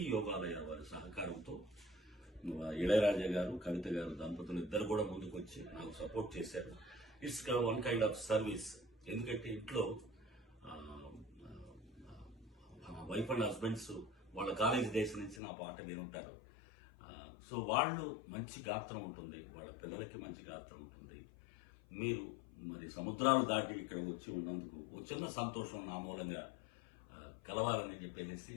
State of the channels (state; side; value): drops out; right; at 15.4 s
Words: యోగాలయ వారి సహకారంతో ఇళయరాజా గారు, కవిత గారు దంపతులు ఇద్దరు కూడా ముందుకు వచ్చి నాకు సపోర్ట్ చేశారు. It's one kind of service. ఎందుకంటే ఇంట్లో వైఫ్ అండ్ హస్బెండ్స్ వాళ్ళ కాలేజ్ డేస్ నుంచి నా పాట వినుంటారు. సో వాళ్ళు మంచి గాత్రం ఉంటుంది, వాళ్ళ పిల్లలకి మంచి గాత్రం ఉంటుంది. మీరు మరి సముద్రాలు దాటి ఇక్కడ వచ్చి ఉన్నందుకు ఒక చిన్న సంతోషం నా మూలంగా కలవాలని చెప్పేసి